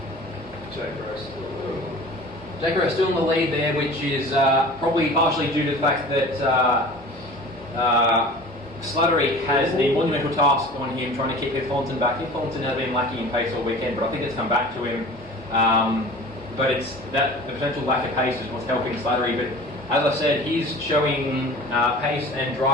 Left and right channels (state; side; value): normal; both; correlation 0.41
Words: Jake Rowe still in the lead there, which is probably partially due to the fact that Slattery has the monumental task on him trying to keep Heath Collinson back. Heath Collinson has been lacking in pace all weekend, but I think it's come back to him. But it's that the potential lack of pace is what's helping Slattery. But as I said, he's showing pace and